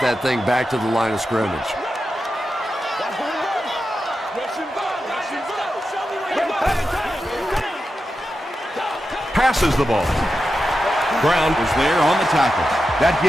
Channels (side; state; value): both; normal; correlation 0.90